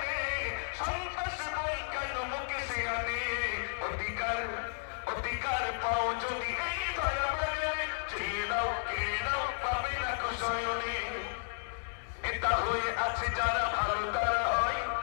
সন্ত্রাসী বই কেন মুখে সিয়ানে। অধিকার অধিকার পাও যদি এই ধরা বাজারে, চেয়ে নাও কেড়ে নাও পাবে না কুশয়নে। নেতা হয়ে আছে যারা ভালো তারা হয়,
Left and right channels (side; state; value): right; silent; digital silence